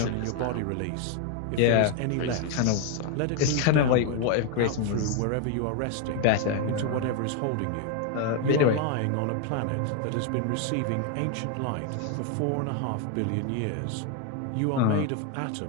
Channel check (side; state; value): both; different; correlation 0.01